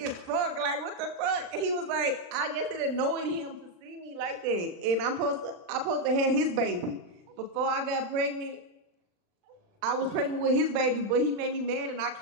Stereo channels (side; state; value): left; late; 39 ms